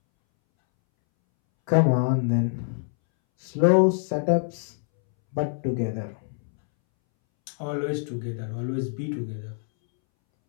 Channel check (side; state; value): right; silent; 62 dB below the other